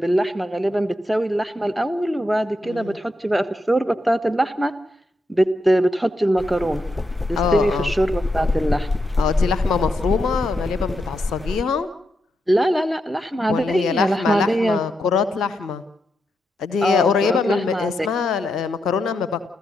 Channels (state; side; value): normal; both; correlation 0.84